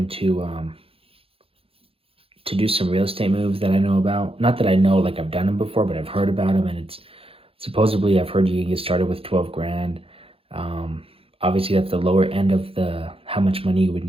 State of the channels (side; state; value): left; late; 0.27 ms